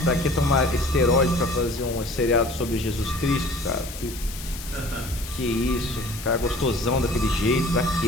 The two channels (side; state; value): left; noise; hiss, 12 dB below the sound